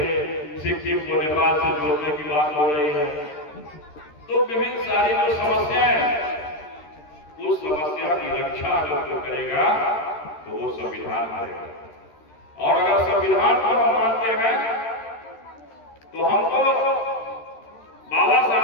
सिक्किम को नेपाल से जोड़ने की बात हो रही है। तो विभिन्न सारी जो समस्याएं हैं, उस समस्या की रक्षा अगर जो करेगा तो वो संविधान करेगा। और अगर संविधान को हम मानते हैं तो हमको बाबा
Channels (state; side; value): late; right; 13 ms